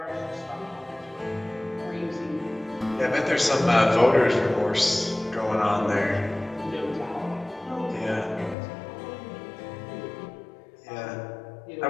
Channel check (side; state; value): right; drops out; at 8.6 s